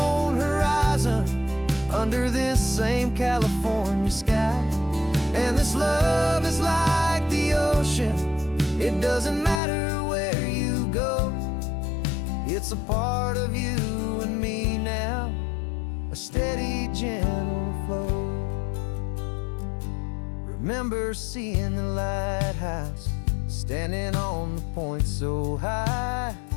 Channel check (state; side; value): drops out; right; at 9.6 s